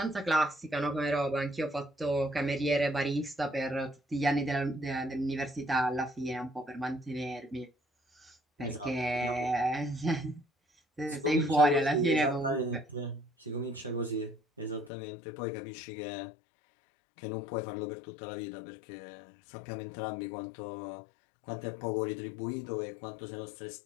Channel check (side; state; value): right; drops out; at 14.9 s